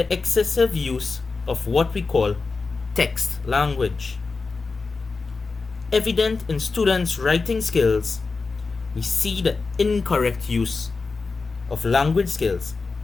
excessive use of what we call text language. Evident in students' writing skills, we see the incorrect use of language skills,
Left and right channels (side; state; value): right; quieter; 4.2 dB